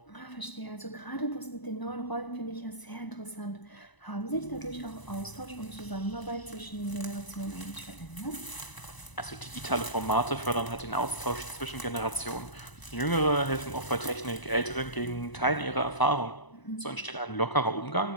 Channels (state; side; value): late; right; 1.0 ms